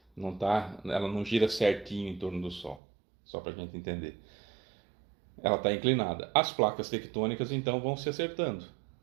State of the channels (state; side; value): drops out; left; at 2.8 s